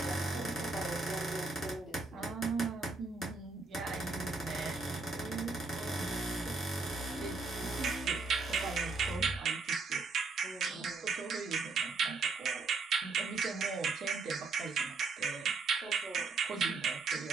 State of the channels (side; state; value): left; quieter; 4.0 dB